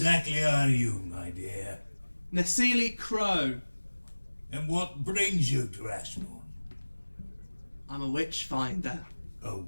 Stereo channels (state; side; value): inverted; both; correlation -1.00